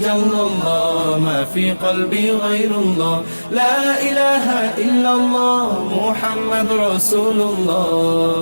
الله ما في قلبي غير الله لا إله إلا الله محمد رسول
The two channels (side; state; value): both; inverted; correlation -1.00